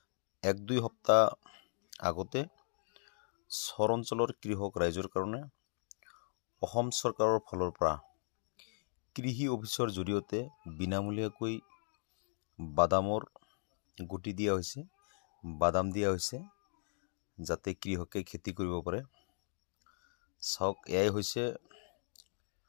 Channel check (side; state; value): right; silent; digital silence